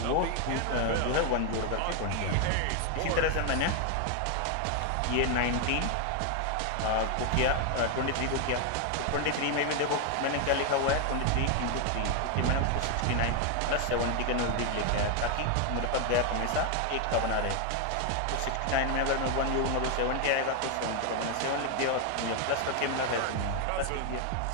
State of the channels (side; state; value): both; different; correlation 0.01